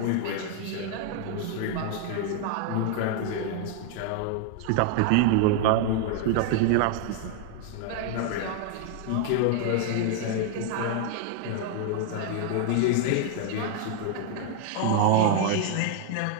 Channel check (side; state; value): both; different; correlation 0.00